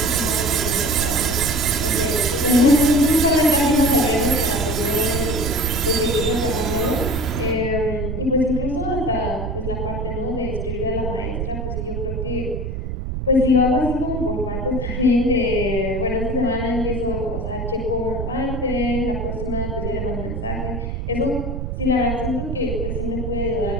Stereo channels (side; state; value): right; noise; rumble, 4 dB below the sound